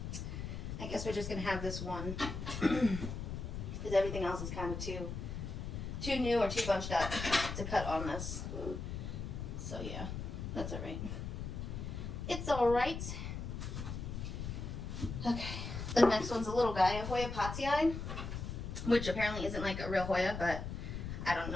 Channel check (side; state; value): left; noise; rumble, 5 dB below the sound